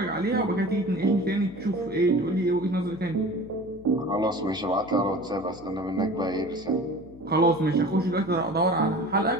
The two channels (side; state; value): left; noise; hum, 21 dB below the sound